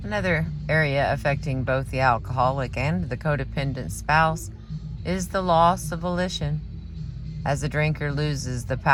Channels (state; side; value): identical; both; correlation 1.00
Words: Another area affecting both the alcoholic and the codependent spouse is the loss of volition, as the drinker loses the